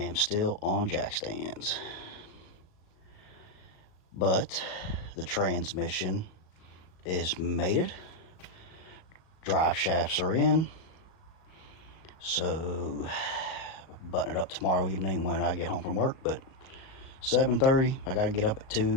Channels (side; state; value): right; late; 37 ms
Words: still on jack stands. But the transmission is mated. Drive shafts are in. So button it up tomorrow evening when I get home from work. But 7:30, I gotta get up at